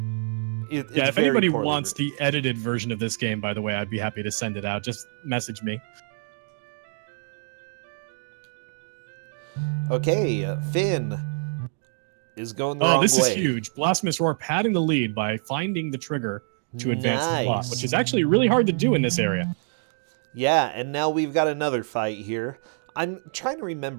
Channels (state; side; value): silent; left; digital silence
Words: It's Yeah, if very anybody poorly wants written. the edited version of this game, by the way, I'd be happy to send it out. Just message me. Okay, Finn is going the wrong way. Oh, this is huge. Blasphemous Roar padding the lead by finding the trigger to advance the plot, Nice. which is actually really hard to do in this area. Yeah, and now we've got another fight here. I'm trying to